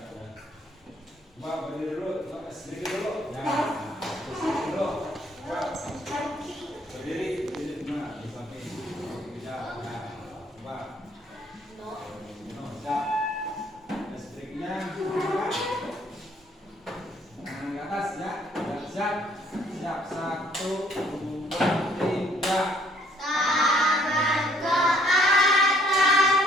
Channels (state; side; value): normal; both; correlation 0.63